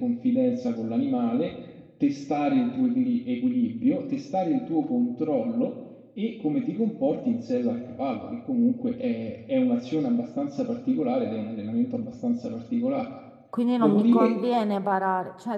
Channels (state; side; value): identical; both; correlation 1.00